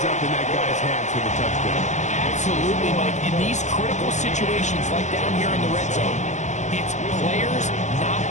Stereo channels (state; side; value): late; right; 0.34 ms